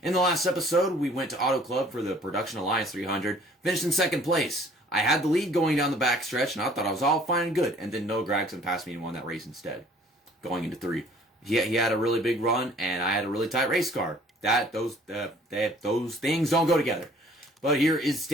In the last episode, we went to Auto Club for the Production Alliance 300, finished in second place. I had the lead going down the backstretch, and I thought I was all fine and good, and then Noah Gragson passed me and won that race instead, going into 3. He had a really big run, and I had a really tight race car. Those things don't go together. But here is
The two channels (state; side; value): normal; both; correlation 0.55